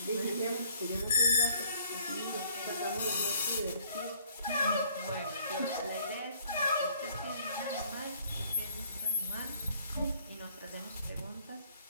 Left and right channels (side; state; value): both; inverted; correlation -0.61